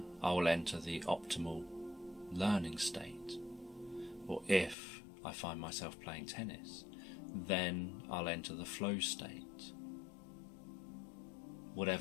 I will enter the optimal learning state. Or if I find myself playing tennis. Then I'll enter the flow state,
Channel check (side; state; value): right; drops out; at 4.8 s